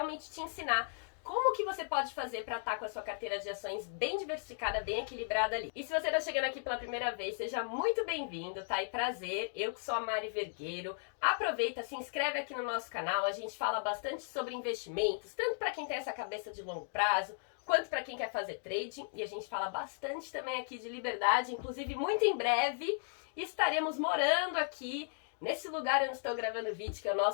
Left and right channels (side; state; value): right; silent; digital silence